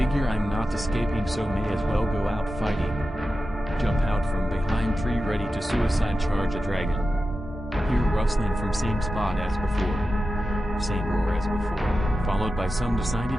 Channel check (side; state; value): both; normal; correlation 0.92